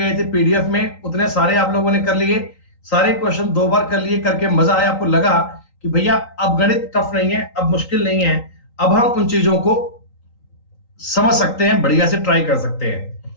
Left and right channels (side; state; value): right; late; 3.9 ms